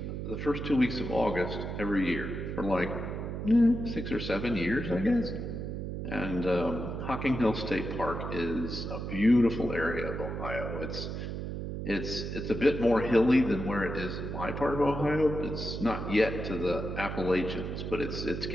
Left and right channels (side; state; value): right; noise; hum, 5 dB below the sound